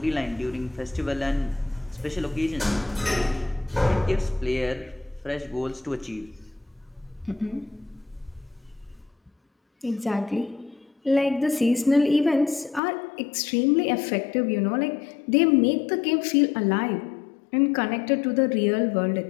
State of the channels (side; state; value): right; drops out; at 12.8 s